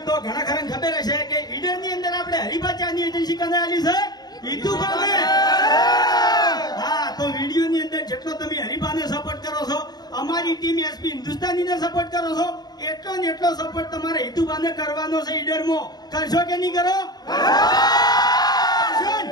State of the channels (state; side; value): late; right; 0.19 ms